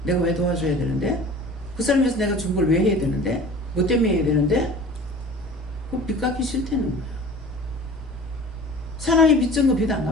내가 왜 도와줘야 되는데? 그 사람에서 내가 준 걸 왜 해야 되는데? 뭐 때문에 해야 되는데? 그 빚 갚기 싫다는 거야. 사랑이 빚진 거 빚 안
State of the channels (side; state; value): both; normal; correlation 0.42